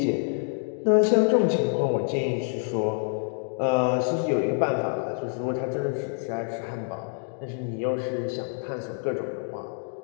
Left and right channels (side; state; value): right; silent; 57 dB below the other